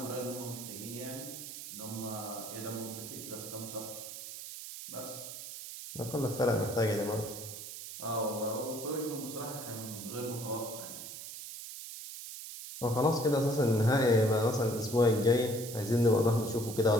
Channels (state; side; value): noise; right; hiss, 10 dB below the sound